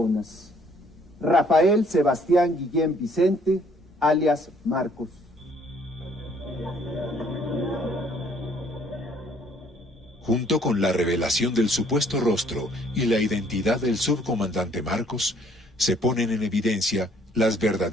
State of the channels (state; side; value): normal; both; correlation 0.62